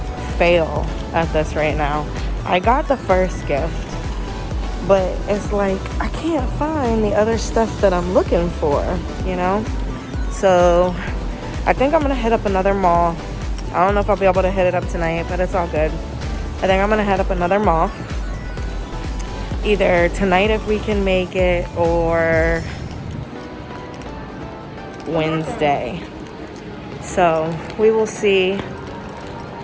fail at this right now. I got the first gift, but it's like I can't find the other stuff that I'm looking for, you know? So I think I'm gonna hit up another mall. I don't know if I'll be able to hit it up tonight, but it's all good. I think I'm gonna head up another mall. Either tonight if we can make it, or Wednesday. So we will see.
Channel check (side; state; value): both; identical; correlation 1.00